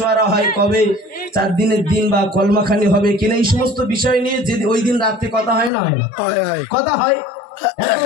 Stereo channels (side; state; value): right; drops out; at 5.7 s